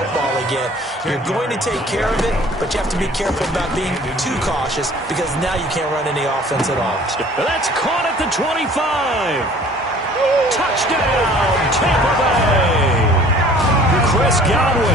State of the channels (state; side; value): normal; both; correlation 0.51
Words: again. You're going to take care of it, but you have to be careful about being too cautious because now you can't run any offense at all. That's caught at the 25. Touchdown, Tampa Bay. Chris